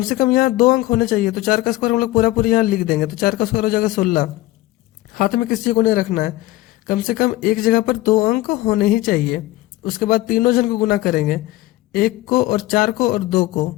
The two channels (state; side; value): quieter; right; 17.4 dB